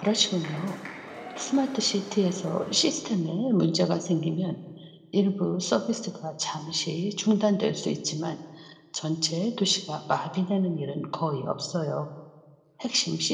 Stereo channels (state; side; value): identical; both; correlation 1.00